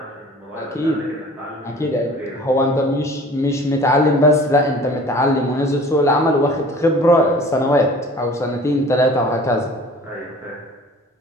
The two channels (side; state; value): both; normal; correlation 0.47